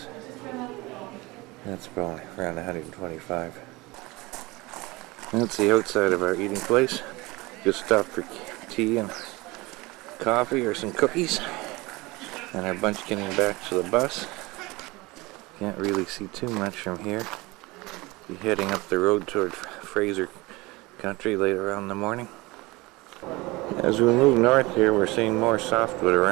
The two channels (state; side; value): quieter; left; 22.6 dB